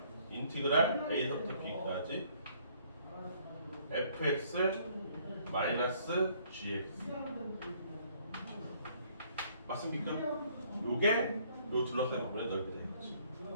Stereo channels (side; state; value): both; inverted; correlation -0.63